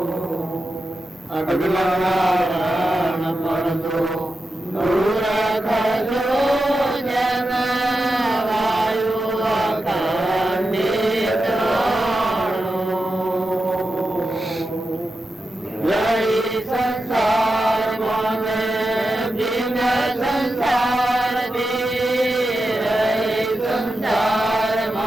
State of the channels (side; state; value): both; normal; correlation 0.90